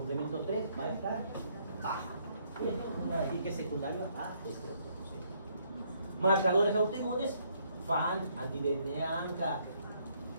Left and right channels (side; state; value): both; inverted; correlation -0.69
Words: 3, va a estar baja. Bien, voy a decir que es secundario a este otro. ¿Sí? Marcadores autoinmunes, FAN, anti-DNA, ANCA.